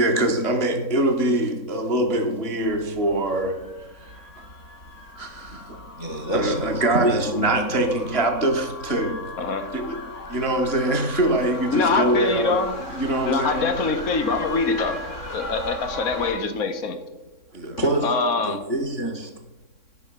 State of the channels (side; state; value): right; late; 3.6 ms